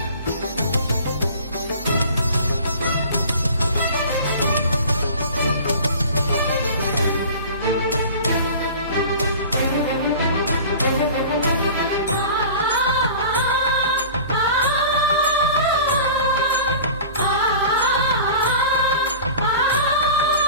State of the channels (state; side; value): inverted; both; correlation -0.40